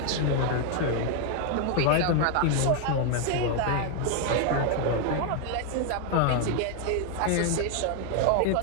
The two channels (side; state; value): both; different; correlation 0.00